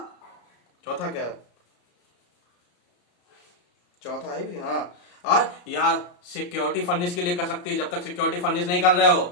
क्या है, चौथा है भी, हाँ। और या सिक्योरिटी फर्निश के लिए कर सकती है, जब तक सिक्योरिटी फर्निश नहीं कर रहे हो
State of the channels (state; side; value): late; right; 34 ms